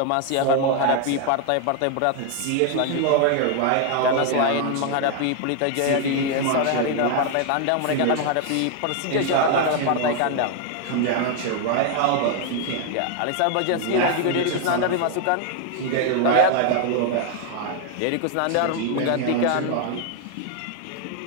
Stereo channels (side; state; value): both; different; correlation 0.00